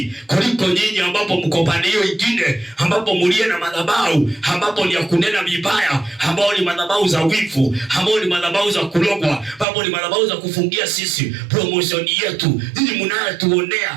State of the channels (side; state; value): left; drops out; at 9.7 s